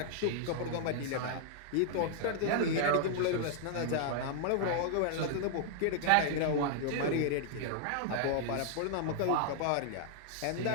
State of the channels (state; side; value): different; both; correlation -0.01